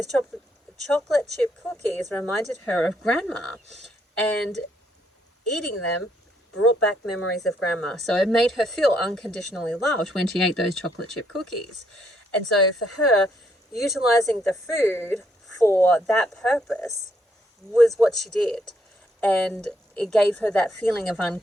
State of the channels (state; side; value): normal; both; correlation 0.73